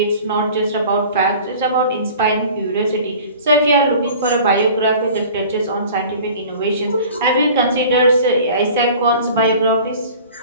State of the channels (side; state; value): both; inverted; correlation -0.44